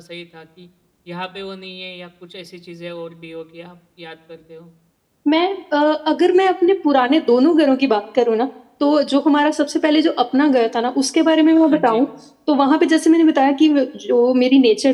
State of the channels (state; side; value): identical; both; correlation 1.00